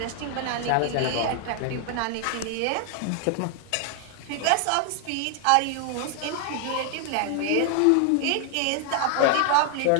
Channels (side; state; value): both; different; correlation 0.00